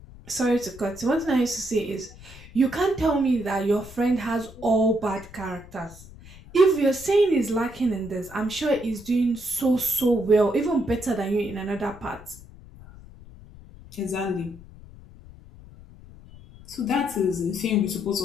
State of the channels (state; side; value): noise; left; rumble, 19 dB below the sound